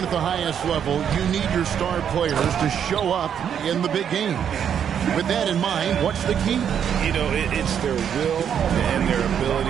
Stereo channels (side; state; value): left; quieter; 8.5 dB